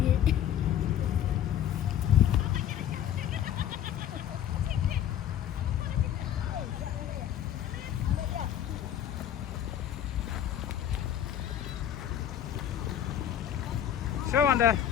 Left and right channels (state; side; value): quieter; right; 10.4 dB